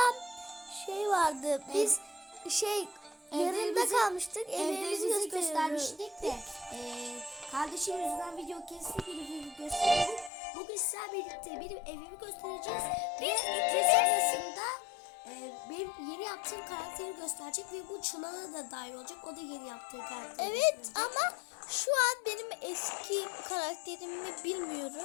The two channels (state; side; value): drops out; right; at 10.3 s